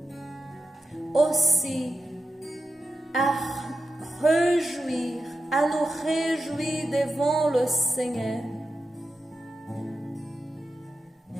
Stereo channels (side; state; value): both; normal; correlation 0.90